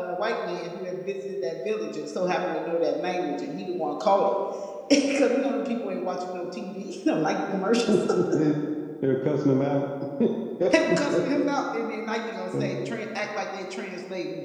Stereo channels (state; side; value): identical; both; correlation 1.00